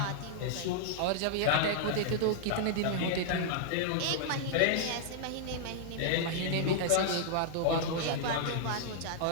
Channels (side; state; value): both; different; correlation -0.01